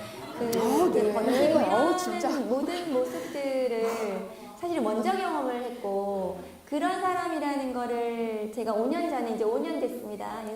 네. 버티고 진짜. 이러는 모든 모습들을 사실 먼저 경험을 했고 그런 사람이라는 거를 제가 5년 전에 이제 5년 됐습니다.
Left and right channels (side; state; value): both; identical; correlation 1.00